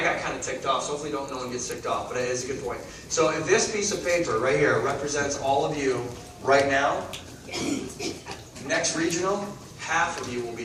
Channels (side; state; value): both; identical; correlation 1.00